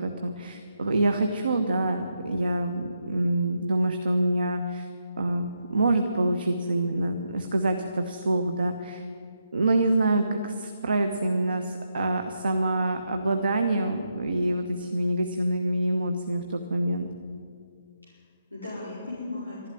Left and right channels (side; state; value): both; inverted; correlation -0.82